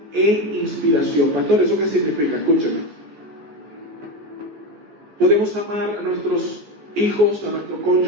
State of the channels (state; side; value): late; left; 14 ms